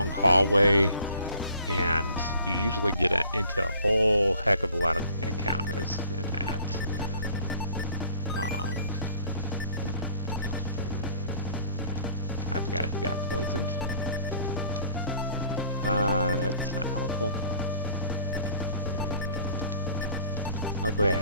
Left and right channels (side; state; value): both; inverted; correlation -0.54